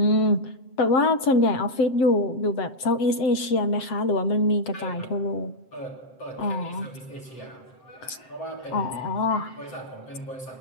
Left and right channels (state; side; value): late; right; 7.7 ms